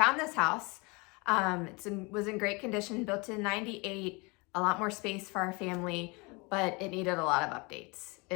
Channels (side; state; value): right; quieter; 28.0 dB